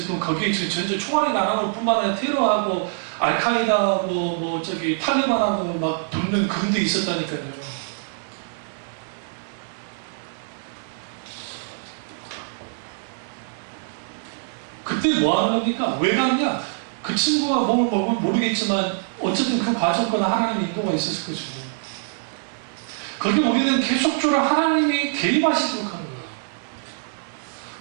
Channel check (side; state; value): left; silent; 63 dB below the other